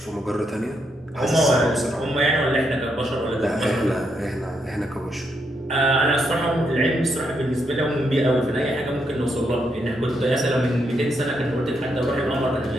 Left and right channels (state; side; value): normal; both; correlation 0.78